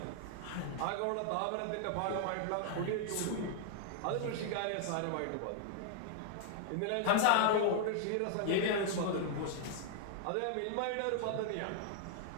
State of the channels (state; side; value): different; both; correlation -0.01